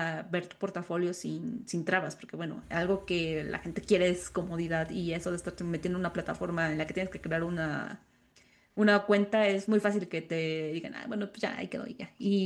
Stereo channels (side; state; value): both; identical; correlation 1.00